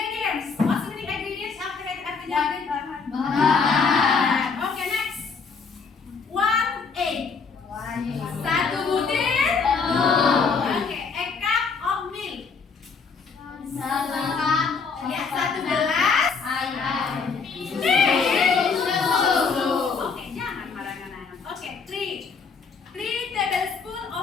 What's the meaning ingredients? Artinya bahan. Oke, next. 1 egg. 1 butir. Oke, a cup of milk. Ya, 1 gelas. Oke, jangan marahkan anak. Oke, 3 tablespoon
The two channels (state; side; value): quieter; right; 5.1 dB